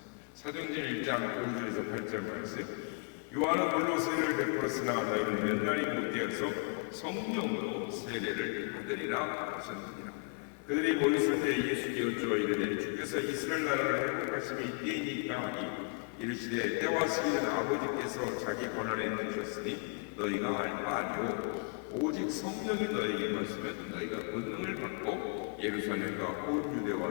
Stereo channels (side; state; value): right; quieter; 37.2 dB